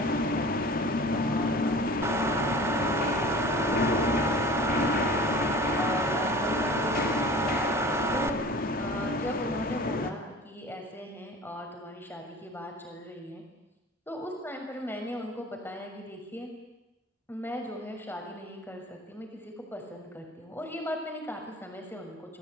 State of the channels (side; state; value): both; normal; correlation 0.41